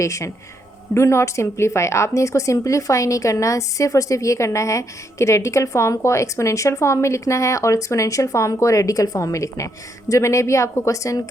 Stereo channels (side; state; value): both; normal; correlation 0.76